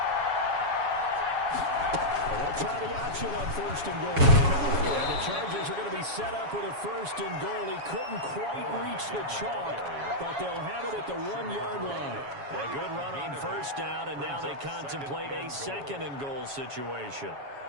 And they'll try the option on first and goal. And the Chargers are going to be set up with a first and goal. He couldn't quite reach the chalk, but they'll have it at the 1-yard line. A good run on first down, and now they contemplate a second and goal situation.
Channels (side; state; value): left; late; 7.2 ms